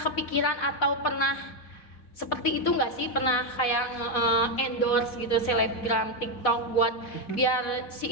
kepikiran atau pernah seperti itu nggak sih? Pernah kayak endorse gitu selebgram TikTok buat biar si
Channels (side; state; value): right; late; 4.1 ms